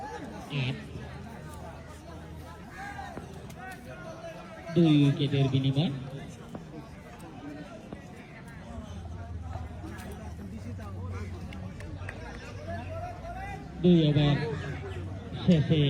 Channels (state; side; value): identical; both; correlation 1.00